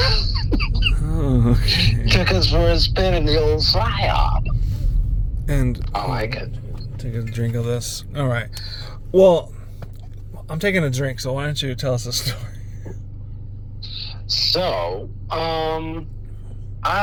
Oh, okay. Took us for a spin in the old psyop. And I like it. Take a drink of this. All right. Well, I'm taking a drink, so why don't you tell us a story? So,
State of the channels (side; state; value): both; identical; correlation 1.00